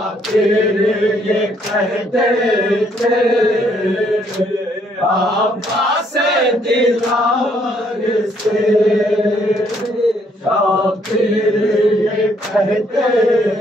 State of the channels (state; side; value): normal; both; correlation 0.68